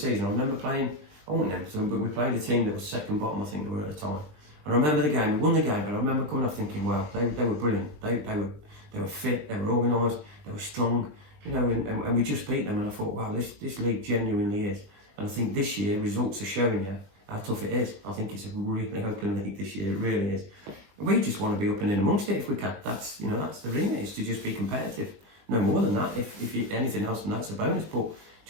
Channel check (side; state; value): left; late; 20 ms